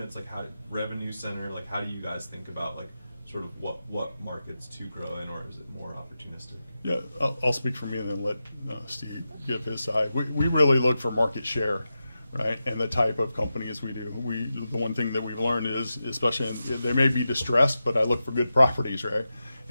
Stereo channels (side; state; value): both; inverted; correlation -0.91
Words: like how revenue center, like how do you guys think about like sort of what markets to grow in, or is it more opportunistic? Yeah, I'll speak for me and then let Steve give his side. We really look for market share, right, and the type of companies we do. The one thing that we've learned is, especially they may be distressed, but I look for good properties, right?